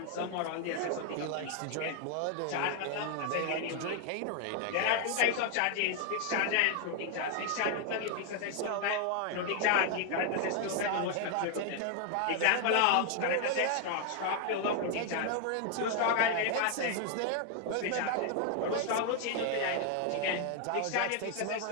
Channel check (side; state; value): both; different; correlation 0.00